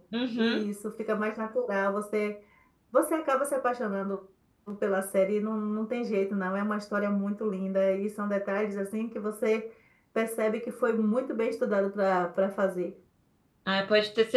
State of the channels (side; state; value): both; identical; correlation 1.00